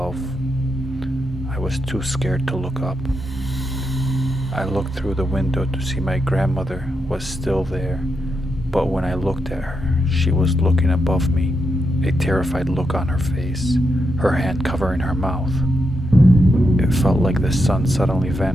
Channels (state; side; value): normal; both; correlation 0.84